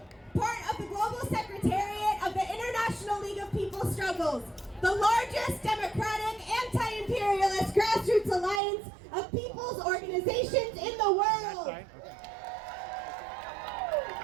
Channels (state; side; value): drops out; left; at 8.6 s